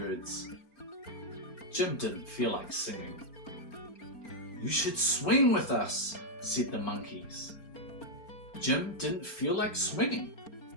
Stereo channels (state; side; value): late; right; 4.3 ms